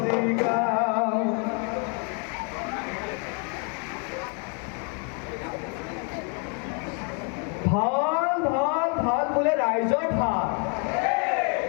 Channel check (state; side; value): quieter; right; 38.4 dB